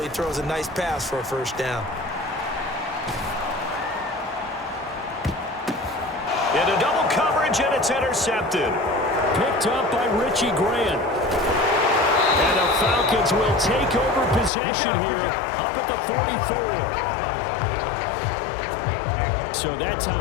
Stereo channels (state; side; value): drops out; right; at 14.5 s